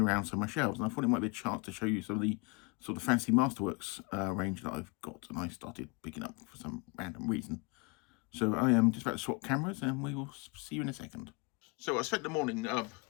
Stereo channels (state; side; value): quieter; right; 28.9 dB